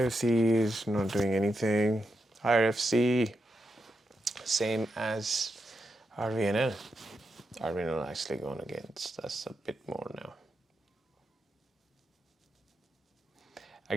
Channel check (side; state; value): both; normal; correlation 0.85